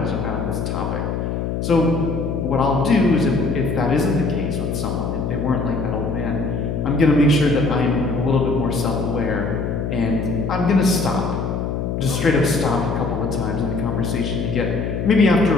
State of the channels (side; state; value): left; noise; hum, 2 dB below the sound